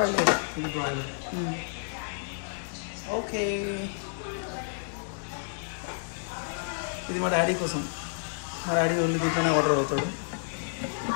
ఇది బ్రాయిలర్. ఓకే, ఇది మా డాడీ కోసం. మా డాడీ ఓన్లీ దీంట్లోనే ఆర్డర్ అవుతాడు.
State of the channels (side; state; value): right; silent; digital silence